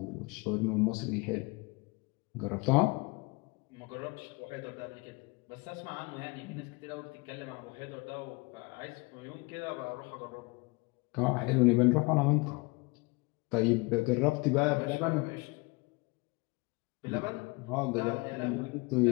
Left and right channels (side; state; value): right; quieter; 26.7 dB